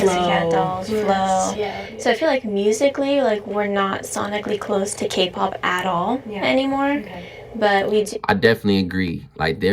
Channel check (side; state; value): both; identical; correlation 1.00